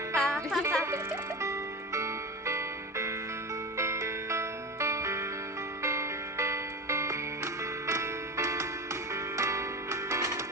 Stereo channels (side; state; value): both; normal; correlation 0.24